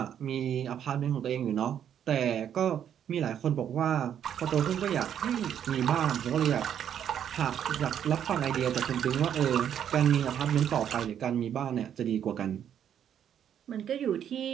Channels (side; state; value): left; quieter; 9.4 dB